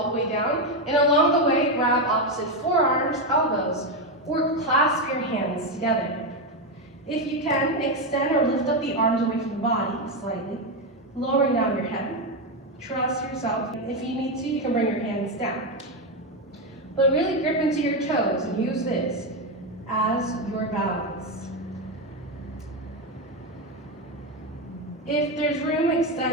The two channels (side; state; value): both; normal; correlation 0.09